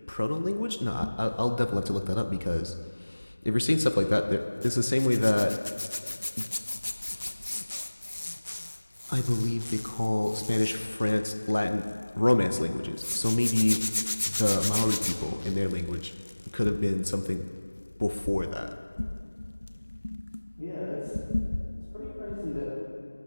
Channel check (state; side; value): inverted; both; correlation -1.00